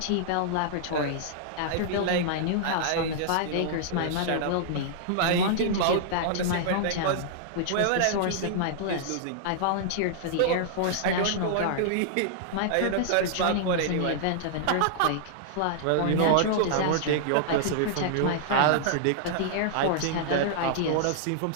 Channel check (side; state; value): both; different; correlation -0.01